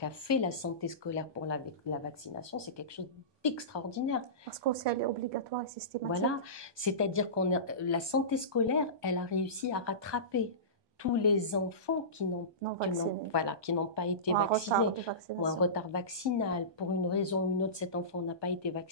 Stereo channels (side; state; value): left; late; 1.2 ms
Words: fait la santé scolaire pour la vaccination, c'est quelque chose d'extraordinaire. Parce qu'elle est obligatoire et systématique. Voilà, c'est-à-dire la santé scolaire, elle a réussi à rattraper tous les enfants qui n'ont pas été vaccinés, ou un retard vaccinal. Pour une raison ou une autre, cet enfant n'a pas été